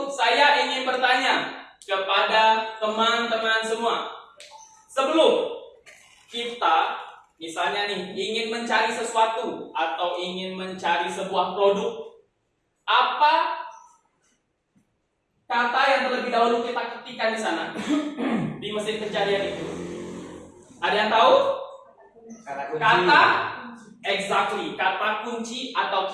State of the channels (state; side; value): identical; both; correlation 1.00